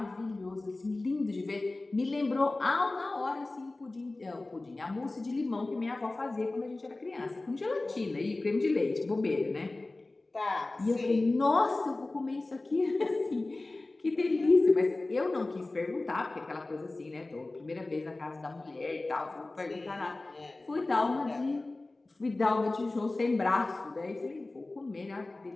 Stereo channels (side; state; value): right; quieter; 3.0 dB